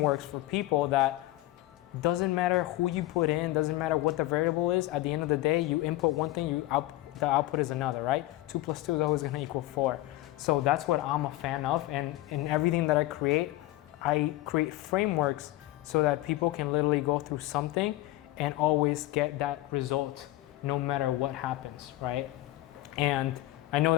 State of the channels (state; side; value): quieter; right; 17.0 dB